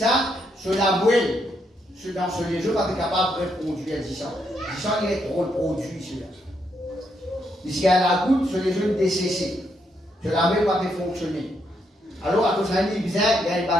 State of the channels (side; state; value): both; normal; correlation 0.77